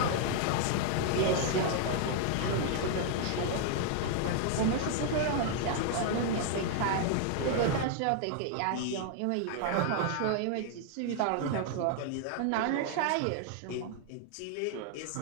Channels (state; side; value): different; both; correlation 0.00